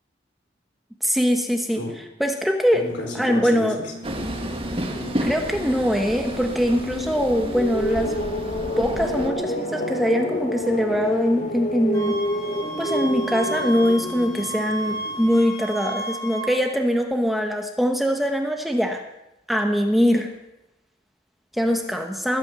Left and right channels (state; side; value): normal; both; correlation 0.80